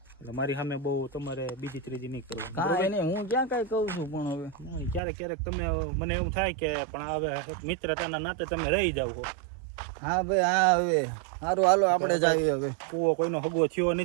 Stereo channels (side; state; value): left; drops out; at 5.0 s